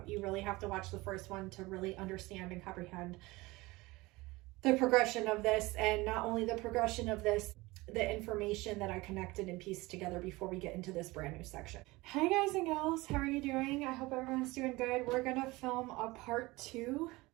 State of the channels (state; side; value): quieter; left; 21.5 dB